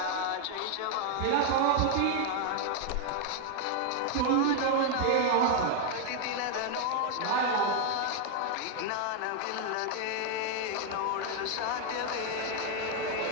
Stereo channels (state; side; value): different; both; correlation 0.00